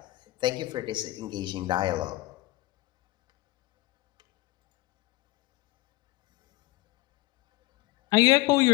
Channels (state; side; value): quieter; right; 19.0 dB